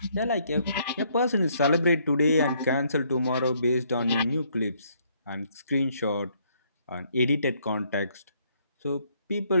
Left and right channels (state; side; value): inverted; both; correlation -0.68